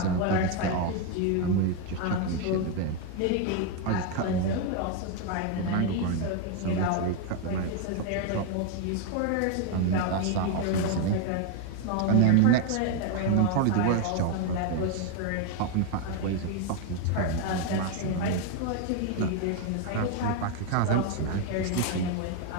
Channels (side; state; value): both; different; correlation 0.01